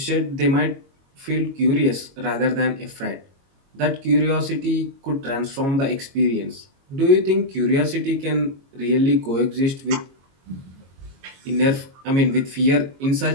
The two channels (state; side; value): late; left; 22 ms